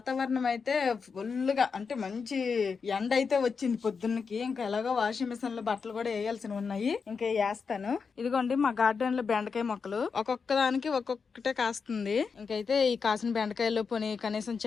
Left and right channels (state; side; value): quieter; right; 5.5 dB